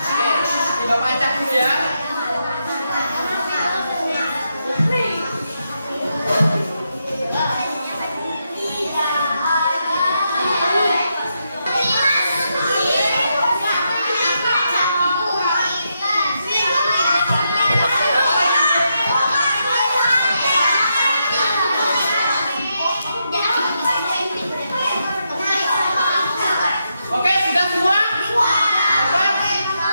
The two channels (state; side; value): inverted; both; correlation -0.83